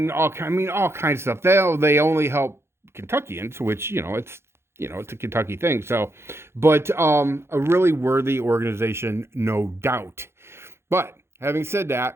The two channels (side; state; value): left; late; 0.12 ms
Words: all kinds of stuff. They only help Kentuckians, which it's a Kentucky thing. So, but a really worthy organization, no doubt. But having said